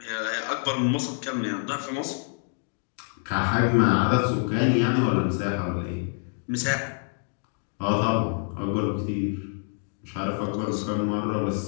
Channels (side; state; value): right; silent; 60 dB below the other